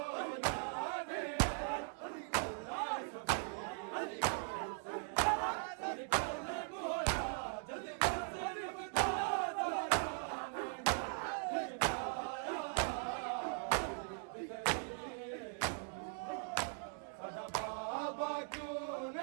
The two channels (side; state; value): left; silent; 51 dB below the other